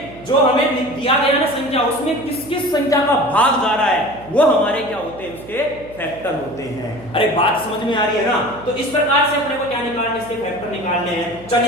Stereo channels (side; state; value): right; noise; hum, 19 dB below the sound